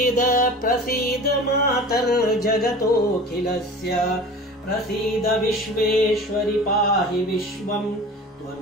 प्रसीद मातर्जगतोऽखिलस्य प्रसीद विश्वेश्वरि पाहि विश्वम्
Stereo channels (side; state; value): both; normal; correlation 0.38